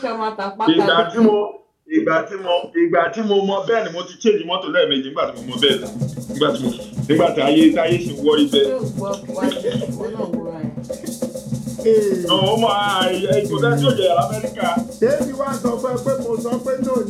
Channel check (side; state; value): both; identical; correlation 1.00